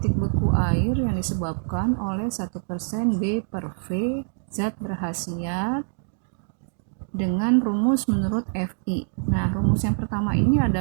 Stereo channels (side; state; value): left; silent; digital silence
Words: beku air yang disebabkan oleh 1% B per V zat berkhasiat dengan rumus menurut Fi. Nah, rumus yang pertama ini